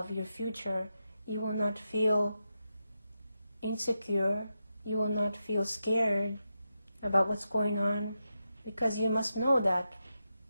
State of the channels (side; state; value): both; inverted; correlation -0.88